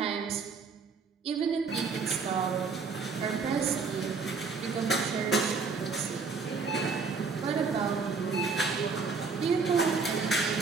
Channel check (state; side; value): quieter; left; 4.8 dB